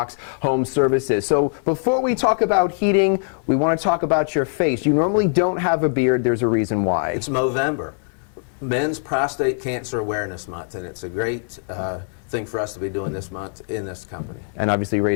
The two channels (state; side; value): silent; right; digital silence